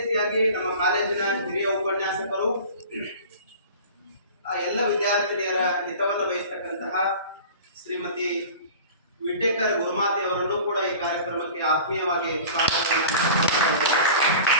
ನಮ್ಮ ಕಾಲೇಜಿನ ಹಿರಿಯ ಉಪನ್ಯಾಸಕರು ಎಲ್ಲ ವಿದ್ಯಾರ್ಥಿನಿಯರ ಹಿತವನ್ನು ಬಯಸ್ತಕ್ಕಂತಹ ಶ್ರೀಮತಿ ವಿಟೇಕರ್ ಗುರುಮಾತೆ ಅವರನ್ನು ಕೂಡ ಈ ಕಾರ್ಯಕ್ರಮಕ್ಕೆ ಆತ್ಮೀಯವಾಗಿ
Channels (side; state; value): both; inverted; correlation -0.40